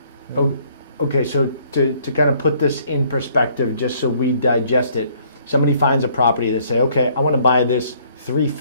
the road. Oh, okay, so to kind of put this in perspective, just so we digest it, somebody finds a property, they say, okay, I want to buy this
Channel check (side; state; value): both; inverted; correlation -0.63